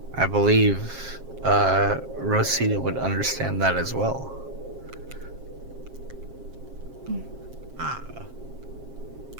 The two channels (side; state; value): left; late; 7.5 ms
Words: I believe Rosita would understand that as well.